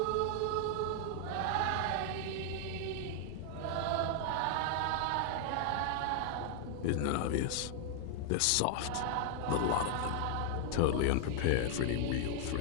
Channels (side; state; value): both; different; correlation 0.00